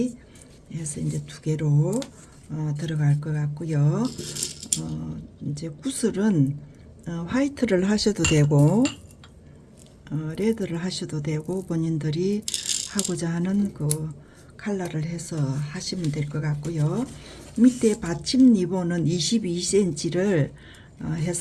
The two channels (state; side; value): identical; both; correlation 1.00